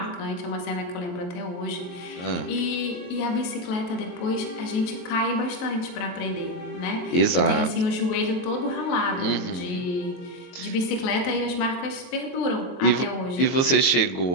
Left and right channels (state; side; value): late; right; 22 ms